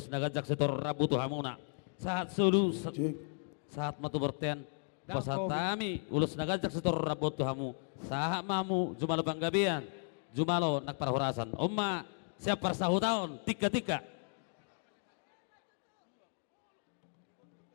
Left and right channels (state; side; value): silent; right; 54 dB below the other